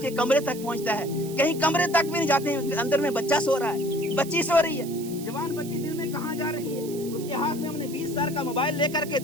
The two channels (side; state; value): right; noise; hiss, 15 dB below the sound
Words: کے کمرے تک پہنچتا ہے، کہیں کمرے تک بھی نہیں جاتے، اندر میں بچہ سو رہا ہے، بچی سو رہی ہے. جوان بچی دن میں کہاں جا رہی ہے؟ اس کے ہاتھ میں ہم نے 20 سال کا موبائل لے کر کے